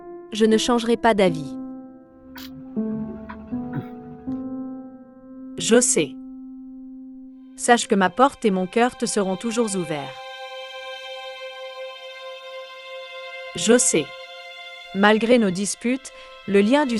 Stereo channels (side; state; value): both; identical; correlation 1.00